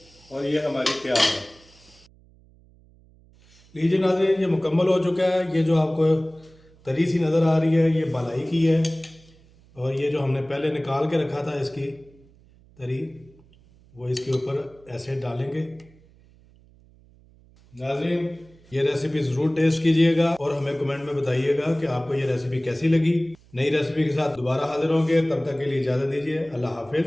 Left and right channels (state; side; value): noise; right; hum, 28 dB below the sound